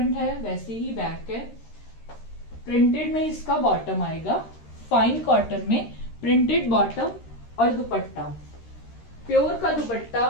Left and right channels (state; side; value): late; right; 13 ms